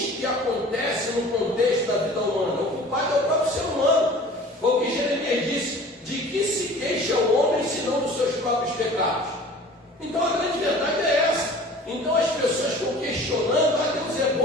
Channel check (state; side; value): normal; both; correlation 0.45